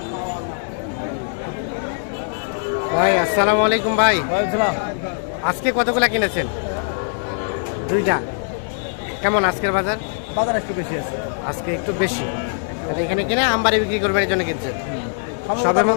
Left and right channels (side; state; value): right; silent; digital silence